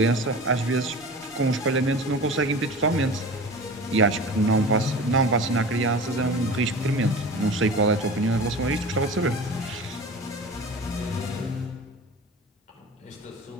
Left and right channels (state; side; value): normal; both; correlation 0.35